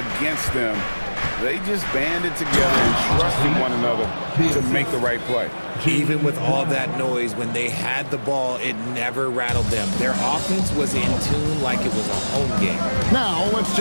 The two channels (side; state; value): both; inverted; correlation -1.00